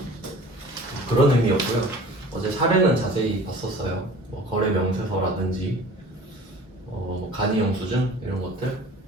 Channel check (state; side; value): normal; both; correlation 0.45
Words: 그런 의미였고요. 어제 사례는 자세히 봤었어요. 뭐 거래 명세서라든지 뭐 간이 영수증 이런 것들,